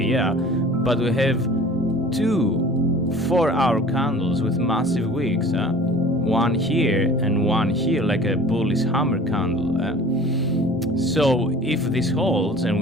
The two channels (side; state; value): both; normal; correlation 0.45